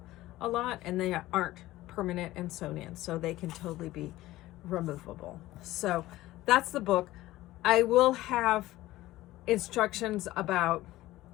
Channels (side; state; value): right; quieter; 16.7 dB